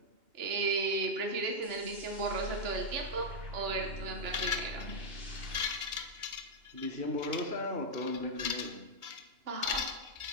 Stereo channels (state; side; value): late; left; 2.9 ms